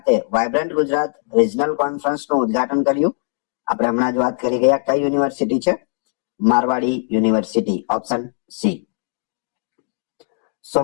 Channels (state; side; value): silent; right; digital silence